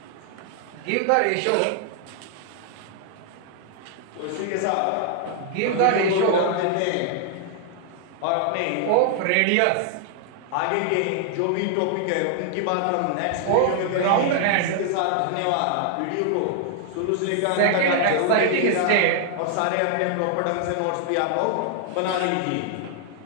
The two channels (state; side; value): different; both; correlation 0.00